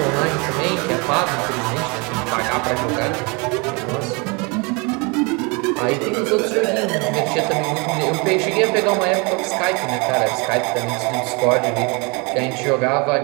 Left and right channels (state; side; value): quieter; left; 30.0 dB